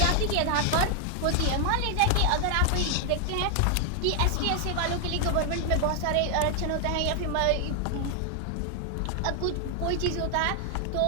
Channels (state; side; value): different; both; correlation 0.00